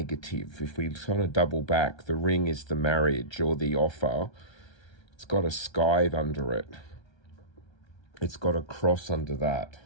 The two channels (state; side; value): late; right; 1.3 ms